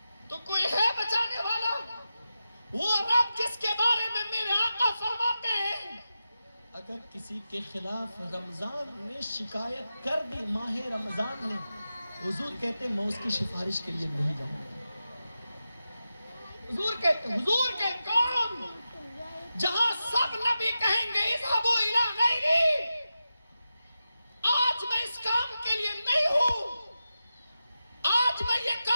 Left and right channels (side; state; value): both; inverted; correlation -0.91